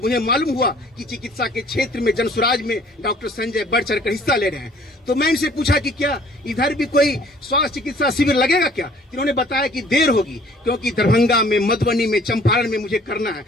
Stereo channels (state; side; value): normal; both; correlation 0.55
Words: मालूम हुआ कि चिकित्सा के क्षेत्र में जनसुराज में डॉक्टर संजय बढ़ चढ़कर हिस्सा ले रहे हैं, तो मैं इनसे पूछा कि क्या इधर भी कोई स्वास्थ्य चिकित्सा शिविर लगेगा क्या? इन्होंने बताया कि देर होगी, क्योंकि दरभंगा में, मधुबनी में, चंपारण में मुझे करना है।